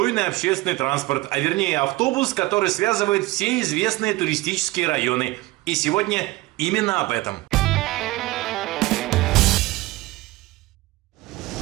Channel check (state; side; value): quieter; left; 19.8 dB